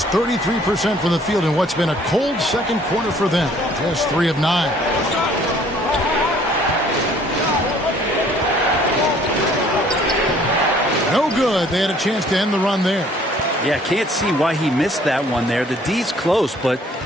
33% from the field in what's been a cold second quarter for them. Just 3 of 9. No good. They had a chance to end the run there. Yeah, can't see why he missed that one there. The D's close, but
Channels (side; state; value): both; normal; correlation 0.58